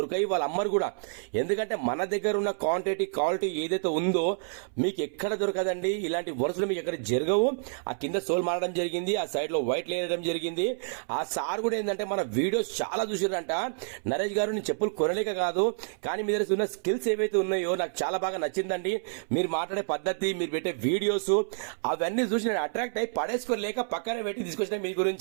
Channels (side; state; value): left; silent; 59 dB below the other